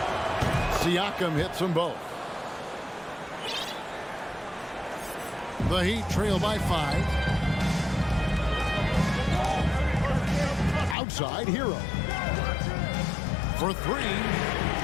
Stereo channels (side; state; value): right; drops out; at 11.0 s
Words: Siakam hits them both. The Heat trail by 5. Outside, Hero. For 3.